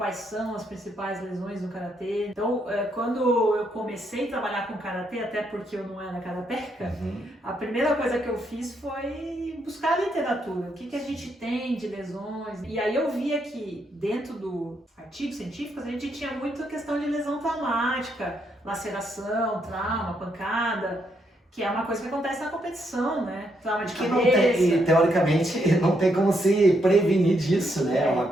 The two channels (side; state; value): both; normal; correlation 0.76